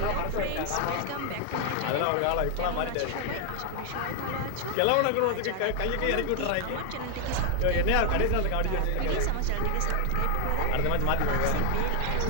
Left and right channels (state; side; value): different; both; correlation 0.00